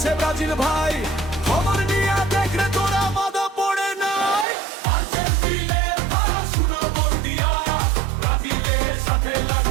ব্রাজিল ভাই, খবর নিয়ে দেখলে তোরা মাথা পড়ে নাই। আর্জেন্টিনার ধারা শুরু বর্দিয়া, ব্রাজিলের সাথে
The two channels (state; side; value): drops out; left; at 4.5 s